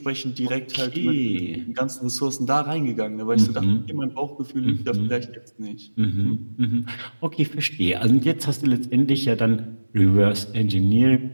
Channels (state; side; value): inverted; both; correlation -1.00